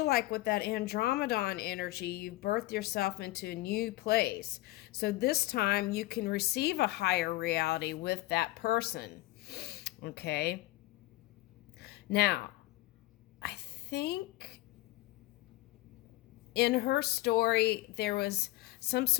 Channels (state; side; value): quieter; right; 18.5 dB